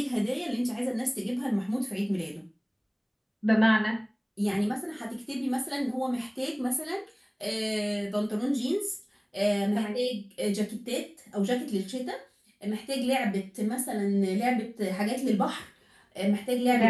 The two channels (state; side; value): identical; both; correlation 1.00